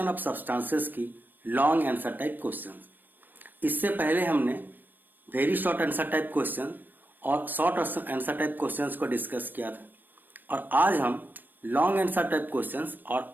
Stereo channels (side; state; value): left; late; 0.091 ms